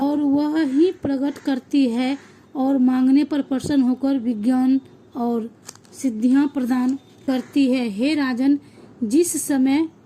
वह ही प्रकट करती है और मांगने पर प्रसन्न होकर विज्ञान और सिद्धियां प्रदान करती है। हे राजन, जिस समय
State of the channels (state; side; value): identical; both; correlation 1.00